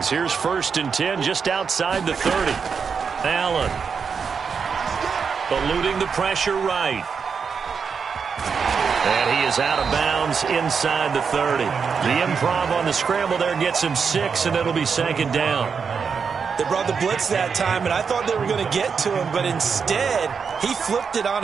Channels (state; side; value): quieter; left; 6.0 dB